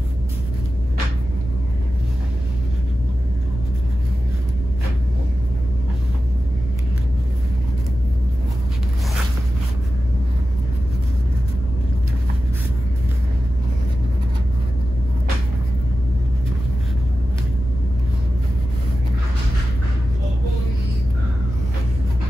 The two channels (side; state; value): left; noise; hum, 11 dB below the sound